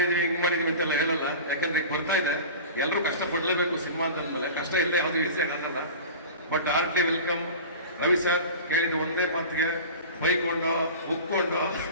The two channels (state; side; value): inverted; both; correlation -0.35